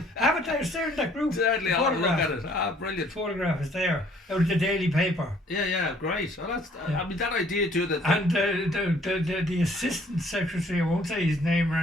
Have it there, staring at that group. Certainly, I'll look at it. Brilliant. The photograph is there out of the Daily Paper. Yeah, great. Well, that's I mean, that idea too. That and the assistant secretary, I won't say his name,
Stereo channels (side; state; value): both; normal; correlation 0.60